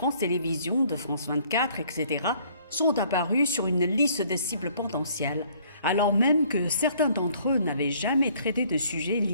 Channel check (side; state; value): both; inverted; correlation -0.60